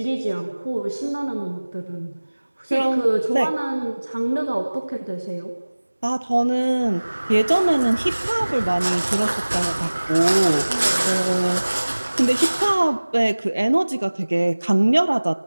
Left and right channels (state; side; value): inverted; both; correlation -1.00